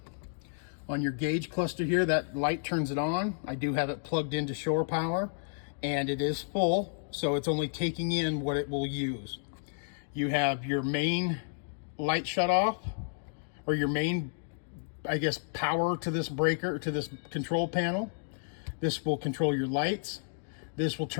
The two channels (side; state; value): right; silent; digital silence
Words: On your gauge cluster here, that light turns it on. I do have it plugged into shore power, and it is full, so it's only taking in what it will use. You have your main light shut off, or your main, I guess, power to this breaker, to this control panel. This will control your lights. This will